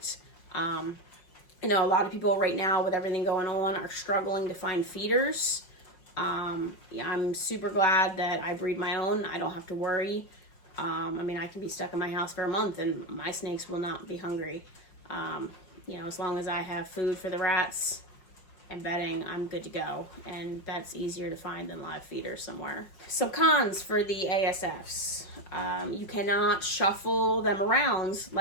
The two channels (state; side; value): late; right; 5.4 ms